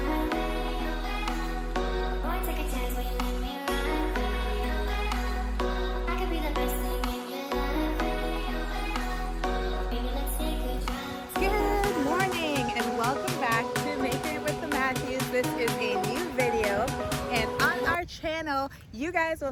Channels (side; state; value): both; identical; correlation 1.00